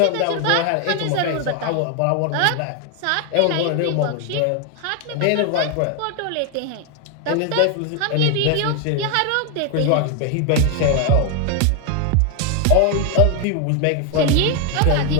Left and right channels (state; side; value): different; both; correlation 0.01